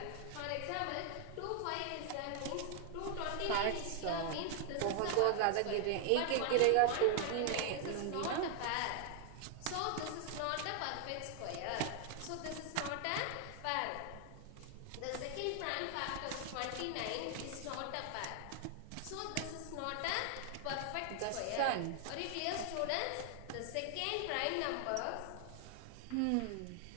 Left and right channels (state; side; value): different; both; correlation 0.00